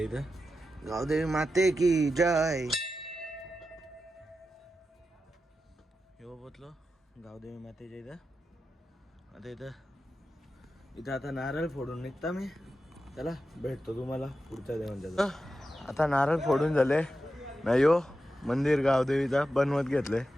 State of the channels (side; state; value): both; normal; correlation 0.90